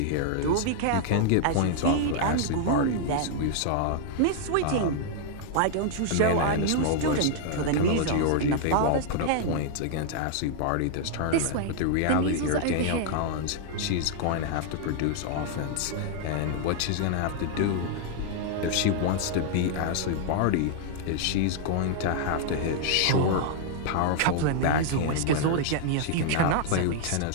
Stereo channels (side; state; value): both; different; correlation -0.01